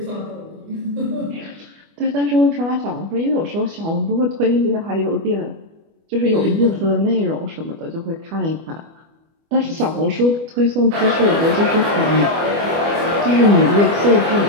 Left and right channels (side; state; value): left; late; 25 ms